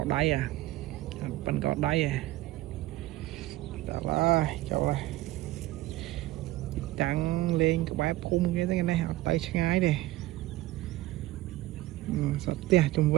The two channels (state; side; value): quieter; left; 17.2 dB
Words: đáy à bắn cỏ đáy à chỗ đây trắng lên cái bãi phun cái này tay ngay đi sọt tia chung